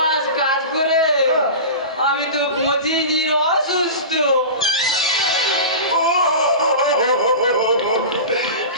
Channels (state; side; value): inverted; both; correlation -0.30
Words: কাজ করে আমি তো 25 দিন অসুস্থ।